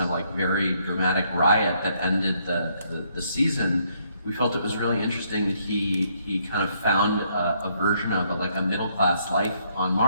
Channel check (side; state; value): both; inverted; correlation -0.71